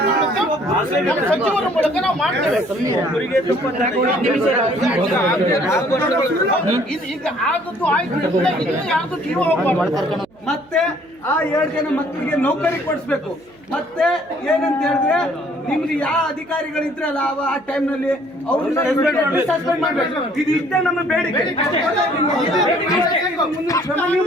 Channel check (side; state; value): right; noise; hum, 30 dB below the sound